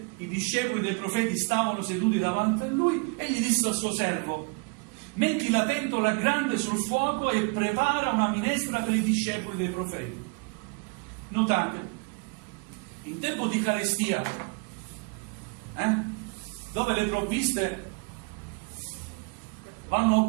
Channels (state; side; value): quieter; left; 32.3 dB